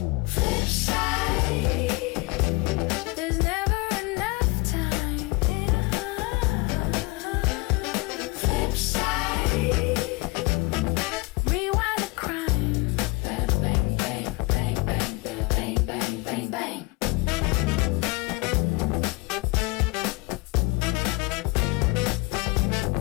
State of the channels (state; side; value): quieter; right; 24.6 dB